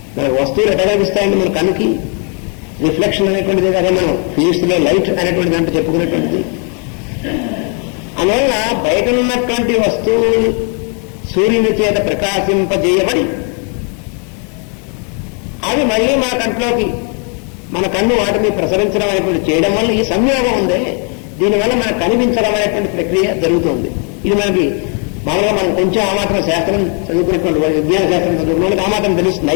మనకు వస్తువులు ఎట్లా కనిపిస్తాయండి? మన కన్నుకి రిఫ్లెక్షన్ అనేటువంటిది, అదే మనం ఫిజిక్స్ లో లైట్ అనేటువంటి దాంట్లో చెప్పుకునేటువంటిది. అందువల్ల బయట ఉన్నటువంటి వస్తువులు సూర్యుని చేత ప్రకాశింపజేయబడి అవి మళ్ళీ మన కంట్లోకి, మన కన్ను వాటిని ప్రసరించడం అనేటువంటి చేయడం వల్ల ఈ సంయోగం ఉందే, దీనివల్ల మనకు కనిపించడం అనేటువంటి ప్రక్రియ జరుగుతుంది. ఇది మనకి మామూలుగా మనం కొంచెం ఆ మాత్రం శాస్త్రం చదువుకునేటువంటి విజ్ఞాన శాస్త్రం చదువుకునే ఆ మాత్రం తెలుస్తుంది.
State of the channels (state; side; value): quieter; right; 39.3 dB